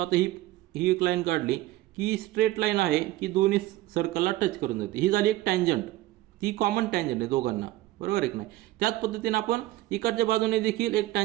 ही एक लाईन काढली की स्ट्रेट लाईन आहे की दोन्ही सर्कलला टच करून जाते, ही झाली एक टँजंट, ती कॉमन टँजंट आहे दोघांना, बरोबर आहे की नाही. त्याच पद्धतीने आपण इकडच्या बाजूने देखील एक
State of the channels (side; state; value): left; quieter; 16.6 dB